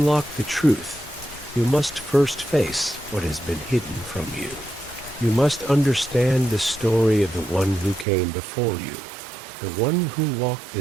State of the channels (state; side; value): drops out; left; at 8.1 s